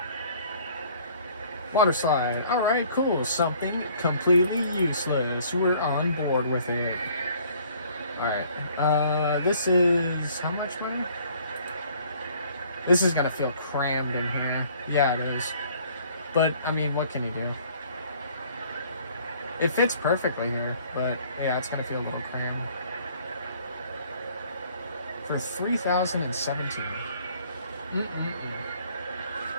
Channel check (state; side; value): inverted; both; correlation -0.57